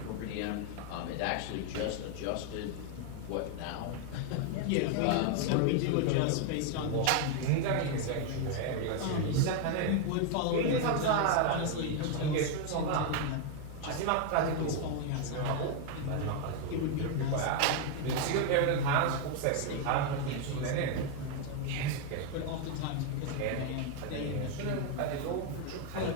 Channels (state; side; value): different; both; correlation 0.00